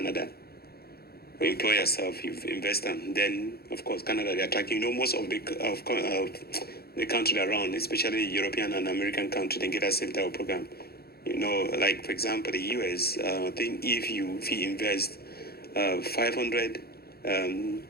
You employ yourself, you invest them. Then of course Canada they attract you. You know, most of the country around, especially European and American country, they get a same type of program. You know, like for example the US, I think if you invest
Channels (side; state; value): right; late; 0.46 ms